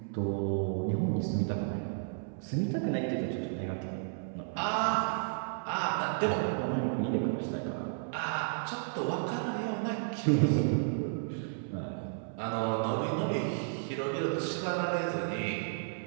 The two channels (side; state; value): left; silent; 56 dB below the other